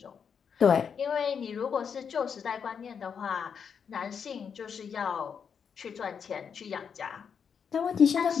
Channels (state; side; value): quieter; right; 6.9 dB